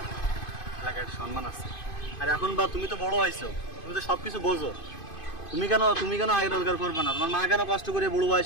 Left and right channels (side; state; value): right; late; 2.5 ms